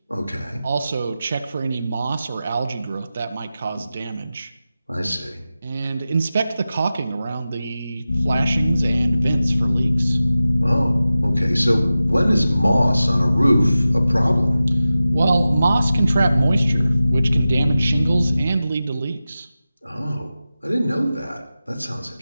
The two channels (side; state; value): both; inverted; correlation -0.94